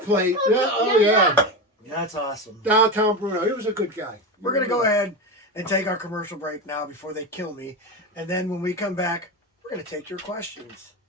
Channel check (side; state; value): both; normal; correlation 0.19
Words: that. plate. Yeah, oh yeah. That's awesome. Downtown Bruno. He was a good guy. We're going to go ahead and take our commercial break now before they kill me. And then when we come back, we're going to take your questions.